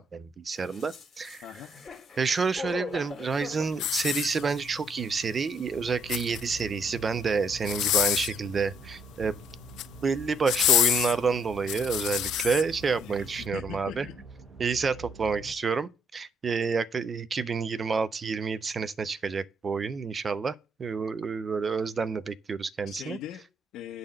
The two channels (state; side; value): normal; both; correlation 0.71